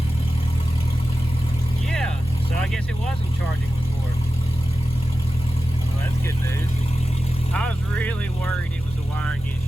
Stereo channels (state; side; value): noise; right; hum, 18 dB below the sound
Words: Yeah, so I guess it wasn't charging before. Well, that's good news. I was really worried it was a wiring